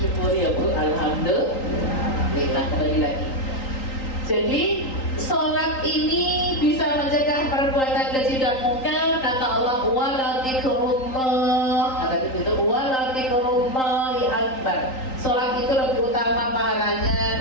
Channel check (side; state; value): right; late; 3.8 ms